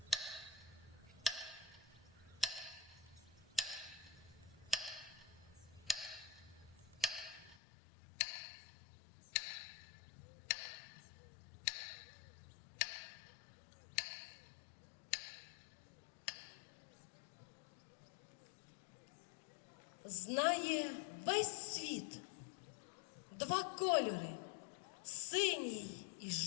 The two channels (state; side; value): drops out; right; at 7.6 s